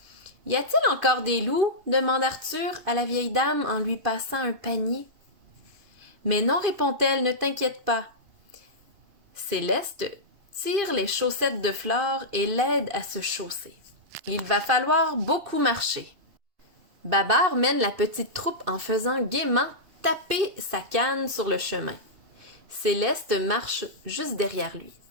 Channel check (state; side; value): late; left; 2.8 ms